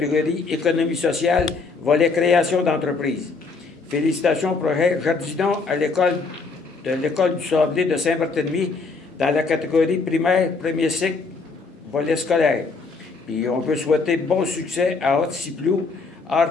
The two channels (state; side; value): quieter; right; 4.3 dB